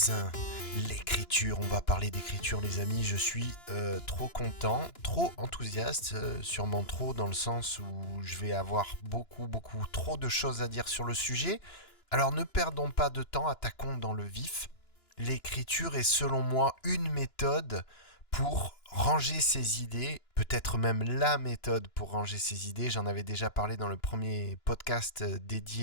l'écriture. On va parler d'écriture les amis, je suis trop content, trop enthousiaste, sûrement trop dans le sens où je vais avoir beaucoup trop de choses à dire sur le sujet. Alors ne perdons pas de temps, attaquons dans le vif. L'écriture est selon moi une méthode pour ranger ses idées, peut-être même la méthode pour ranger ses idées. J'en avais déjà parlé dans le premier podcast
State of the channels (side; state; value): right; late; 2.9 ms